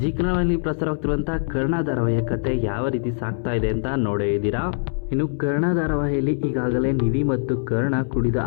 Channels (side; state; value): right; silent; 64 dB below the other